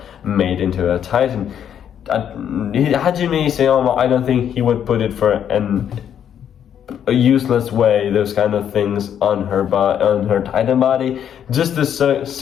made into a Titan. Hajime Isayama, I don't think he would put it for a useless way, those kind of things on her Titan body, just to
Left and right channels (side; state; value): right; quieter; 9.2 dB